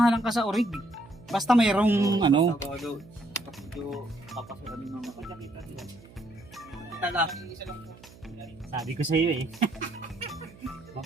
ka sa orig. Basta mayroong ano. Papasukan yung mga kita lang. Sabi ko sa iyo eh.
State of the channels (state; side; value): noise; right; hum, 22 dB below the sound